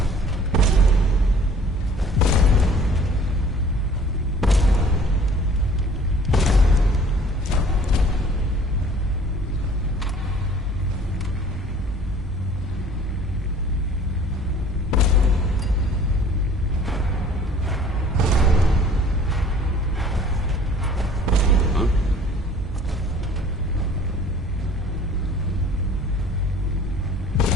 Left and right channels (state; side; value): normal; both; correlation 0.51